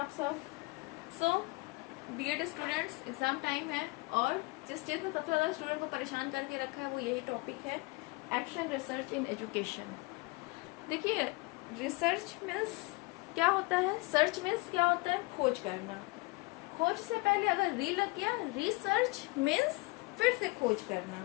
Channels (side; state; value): right; quieter; 25.8 dB